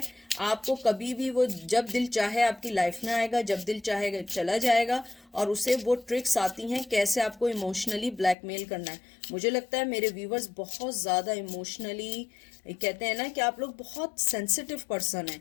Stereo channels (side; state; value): right; drops out; at 8.3 s